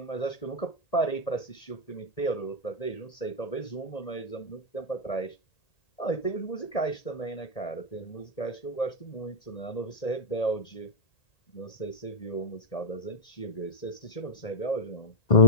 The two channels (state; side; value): late; right; 1.8 ms